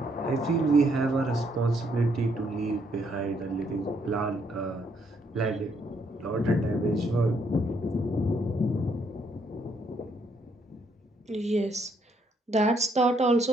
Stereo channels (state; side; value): normal; both; correlation 0.72